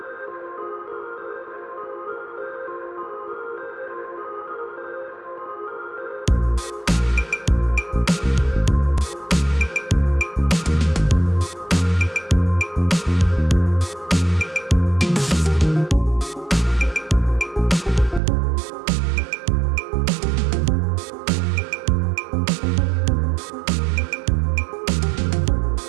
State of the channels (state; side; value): drops out; left; at 18.2 s